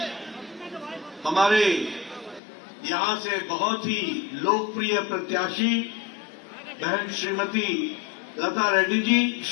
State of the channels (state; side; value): drops out; right; at 2.4 s